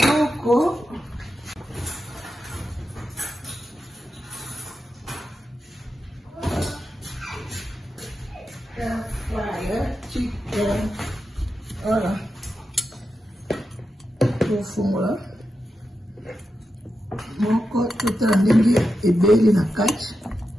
Air fryer chicken. Voilà. Tout fond là. Moko tota ndenge ebeli na kati.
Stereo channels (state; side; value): normal; both; correlation 0.89